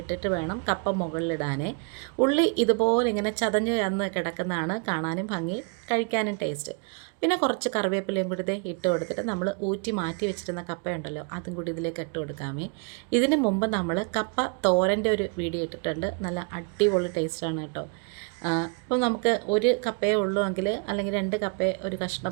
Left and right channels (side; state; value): left; quieter; 34.7 dB